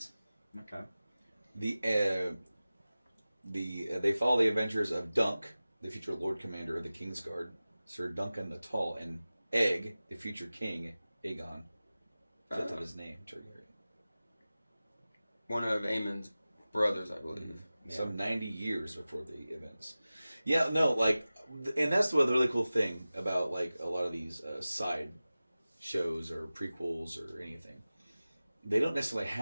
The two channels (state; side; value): inverted; both; correlation -0.96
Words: Okay. They follow the adventures of Dunk, the future Lord Commander of the Kingsguard, Sir Duncan the Tall, and Egg, the future King Aegon, fifth of his name, Targaryen. One of Aemon's brothers, I believe. Some 90 years before the events. Yeah, no, and that's the really cool thing about a lot of these side shows or prequels or anything. They don't necessarily